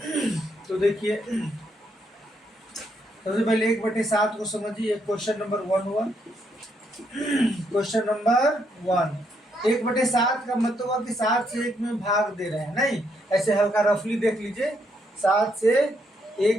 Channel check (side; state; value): both; normal; correlation 0.75